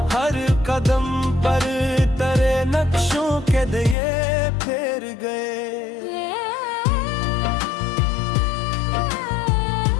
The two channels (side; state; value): right; drops out; at 4.0 s